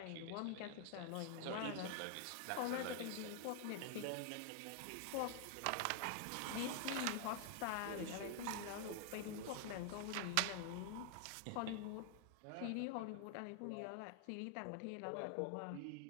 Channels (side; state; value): both; different; correlation 0.00